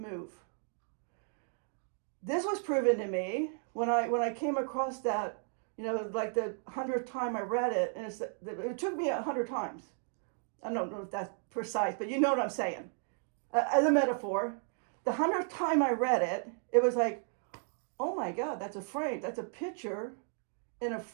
This was proven to me when I came across that, like the 100th time I read it, and it took me 100 times. I don't know if that's precise, but you know what I'm saying. As a metaphor, the 100th time I read it, it was like, oh my God, that's a frame. That's a picture in a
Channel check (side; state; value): left; silent; 55 dB below the other